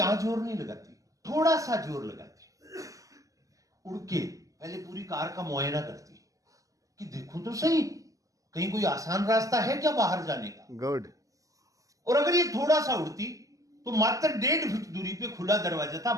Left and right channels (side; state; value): left; late; 0.16 ms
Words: जोर नहीं लगाती, थोड़ा सा जोर लगाती, उड़ के पहले पूरी कार का मुआयना करती कि देखूं तो सही कहीं कोई आसान रास्ता है क्या बाहर जाने का। गुड। और अगर ये थोड़ा सा उड़ती तो मात्र 1.5 फीट दूरी पे खुला दरवाजा था,